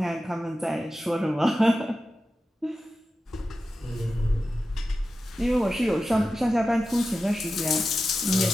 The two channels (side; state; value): both; normal; correlation 0.93